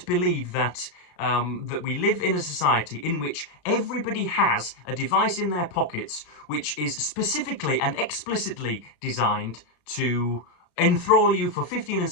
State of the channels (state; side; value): late; right; 34 ms